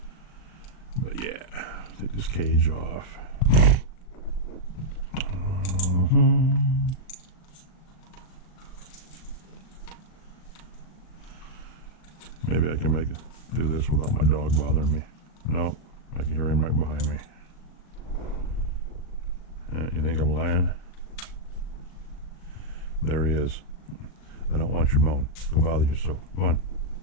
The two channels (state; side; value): late; right; 38 ms